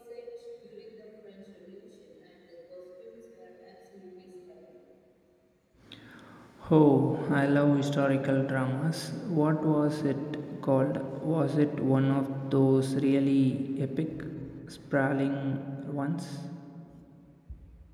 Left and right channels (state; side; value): identical; both; correlation 1.00